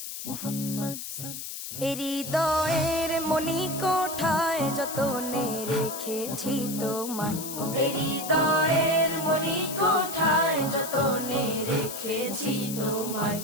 Muhammad হৃদয়ের মনি কোঠায় যতনে রেখেছি তোমায়, হৃদয়ের মনি কোঠায় যতনে রেখেছি তোমায়।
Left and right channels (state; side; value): noise; left; hiss, 8 dB below the sound